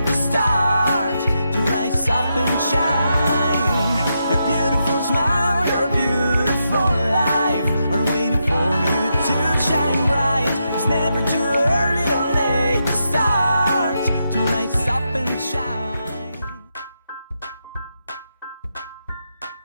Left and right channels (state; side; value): inverted; both; correlation -0.84